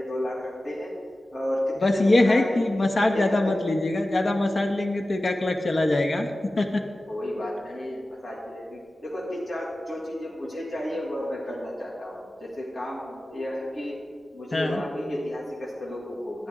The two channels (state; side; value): normal; both; correlation 0.95